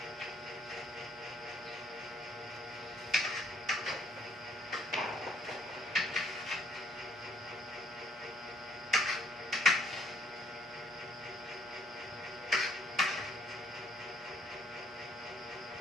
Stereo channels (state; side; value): noise; right; hum, 27 dB below the sound